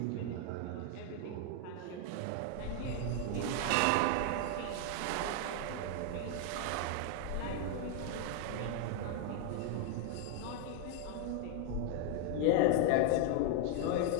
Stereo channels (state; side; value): different; both; correlation 0.00